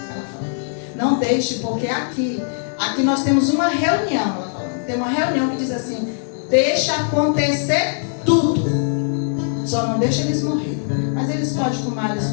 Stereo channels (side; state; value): right; silent; 62 dB below the other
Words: falou, não deixe, porque aqui nós temos uma reunião, ela falou, tem uma reunião que diz assim, deixa acontecer tudo. Só não deixa eles morrerem. Mas eles podem fumar, eles